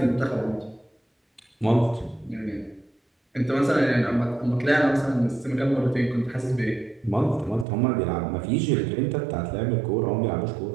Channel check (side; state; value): left; drops out; at 7.7 s